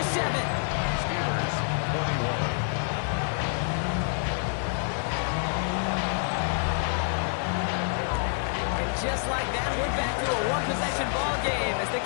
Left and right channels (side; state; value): right; silent; 60 dB below the other